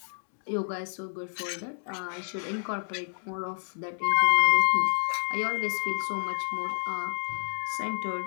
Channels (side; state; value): right; silent; digital silence